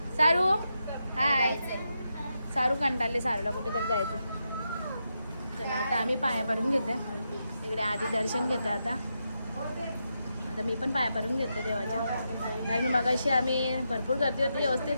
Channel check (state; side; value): inverted; both; correlation -0.85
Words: सारू हाय. सारू कंटाळले. सारूला कुठेतरी जायचं. चला आता आम्ही पाया पडून घेते. इकडे आधी दर्शन घेते. आता मी पण पाया पडून घेते देवाच्या. कारण मगाशी आम्ही भरपूर गर्दी होती. व्यवस्थित